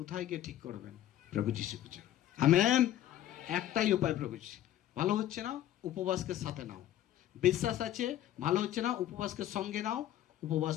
গিয়ে ঠিক করবেন? প্রভু যিশু খুঁজে। আমেন। একটাই উপায়, প্রভু যিশু। ভালো হচ্ছে না, উপবাসকে সাথে নাও। বিশ্বাস আছে, ভালো হচ্ছে না, উপবাসকে সঙ্গে নাও,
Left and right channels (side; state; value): right; quieter; 12.5 dB